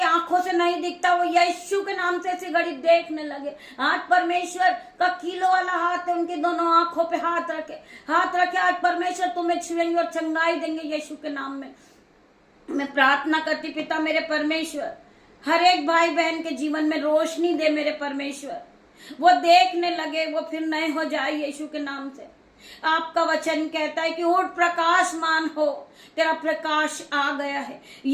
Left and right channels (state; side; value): identical; both; correlation 1.00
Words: आंखों से नहीं दिखता वो यीशु के नाम से इसी घड़ी देखने लगे। आज परमेश्वर का कीलो वाला हाथ है, उनकी दोनों आंखों पे हाथ रखे। आज परमेश्वर तुम्हें छुएंगे और चंगाई देंगे यीशु के नाम में। मैं प्रार्थना करती पिता मेरे परमेश्वर, हर एक भाई बहन के जीवन में रोशनी दे मेरे परमेश्वर, वो देखने लगे, वो फिर नए हो जाए यीशु के नाम से। आपका वचन कहता है कि उठ प्रकाशमान हो, तेरा प्रकाश आ गया है।